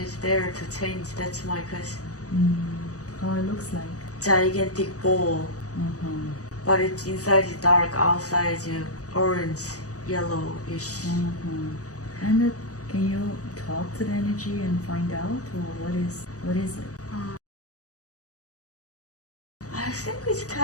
is there to change. That's my question. How it looks like? Gigantic ball, but it's inside is dark, outside is orange, yellowish. And can you talk to the energy and find out, or what is it? I think it's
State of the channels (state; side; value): late; right; 0.66 ms